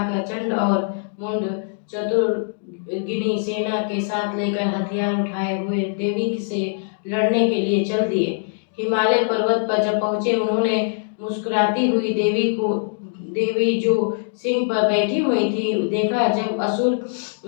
चंड और मुंड चतुर्गिनी सेना के साथ लेकर हथियार उठाए हुए देवी से लड़ने के लिए चल दिए। हिमालय पर्वत पर जब पहुंचे, उन्होंने मुस्कुराती हुई देवी जो सिंह पर बैठी हुई थी देखा। जब असुर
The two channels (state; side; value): silent; right; digital silence